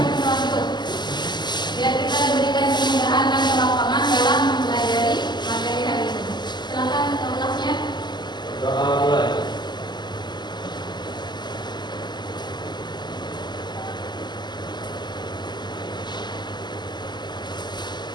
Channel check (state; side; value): late; right; 0.21 ms